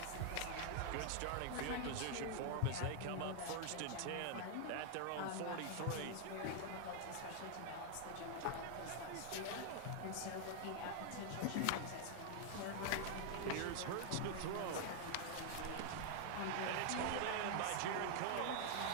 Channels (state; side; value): different; both; correlation 0.00